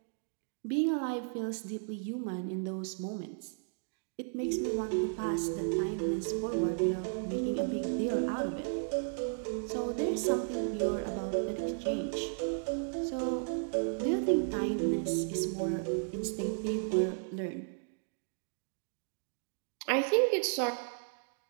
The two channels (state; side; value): silent; left; digital silence